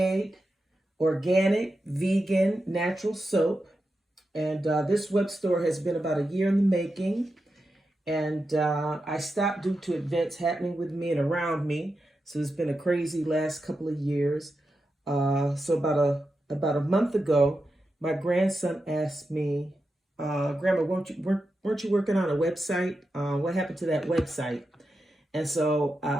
organic, vegan, natural soap, and this web store has been about a year in the making. And I stopped due to events happening with me and around me. So it's been a crazy last couple of years. So about a month ago, my grandson asked me, "Grandma, weren't you working on a website? What happened to that website?" And so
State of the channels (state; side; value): normal; both; correlation 0.89